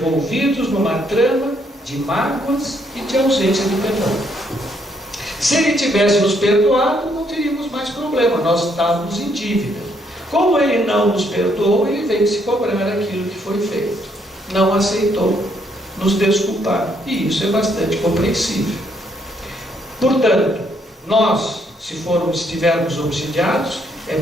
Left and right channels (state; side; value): normal; both; correlation 0.71